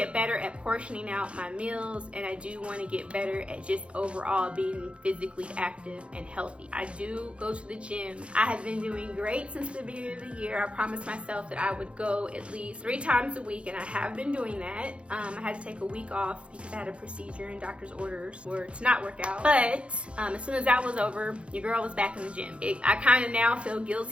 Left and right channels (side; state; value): left; late; 0.060 ms